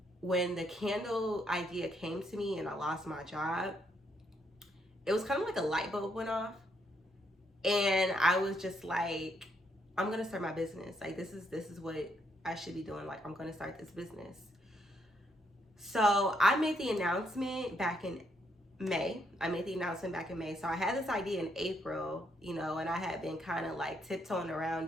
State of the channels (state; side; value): normal; both; correlation 0.75